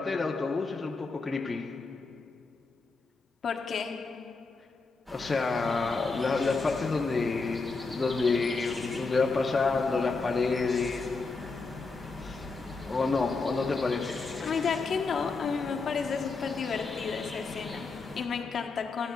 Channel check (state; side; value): quieter; right; 4.1 dB